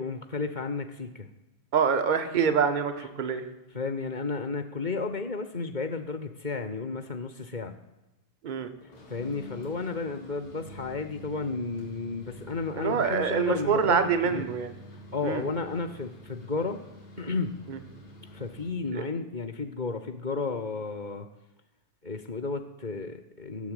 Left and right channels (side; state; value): left; late; 2.2 ms